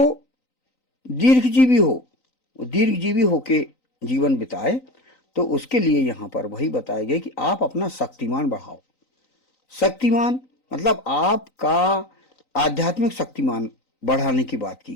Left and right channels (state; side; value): late; right; 3.9 ms